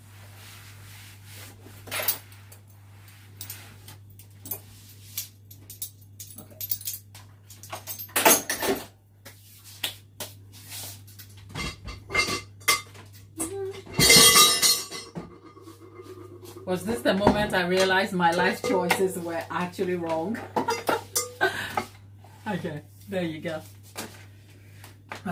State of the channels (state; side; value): identical; both; correlation 1.00